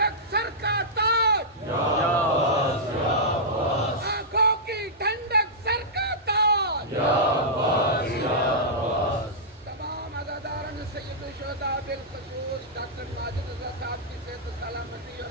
سر کا تاج، یا عباس یا عباس۔ آنکھوں کی ٹھنڈک سر کا تاج، یا عباس یا عباس۔ تمام عزاداران سید الشہداء بالخصوص ڈاکٹر ماجد رضا صاحب کی صحت و سلامتی اور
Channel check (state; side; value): normal; both; correlation -0.12